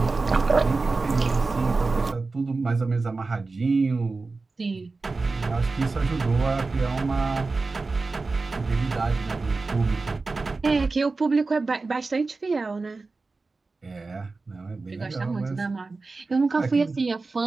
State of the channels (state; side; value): quieter; left; 3.8 dB